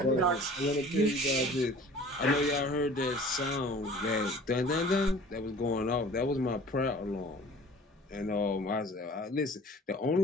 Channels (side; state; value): both; normal; correlation 0.46